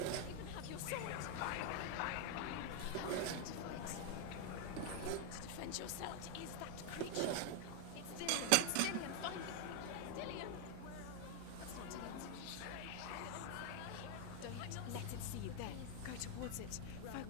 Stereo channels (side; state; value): both; different; correlation 0.00